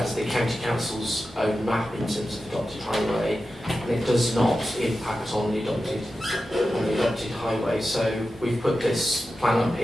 is the county council's own map in terms of adopted highway, and it does not impact on the adopted highway. So we've put this plan up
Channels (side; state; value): both; normal; correlation 0.92